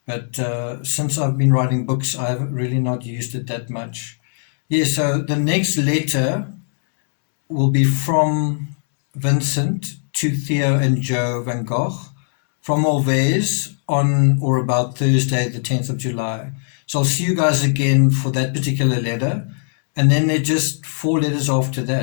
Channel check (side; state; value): right; silent; digital silence